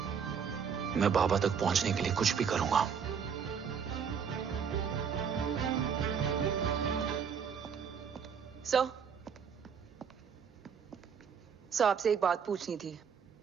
मैं बाबा तक पहुंचने के लिए कुछ भी करूंगा। सर, आपसे एक बात पूछनी थी।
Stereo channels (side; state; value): left; quieter; 6.8 dB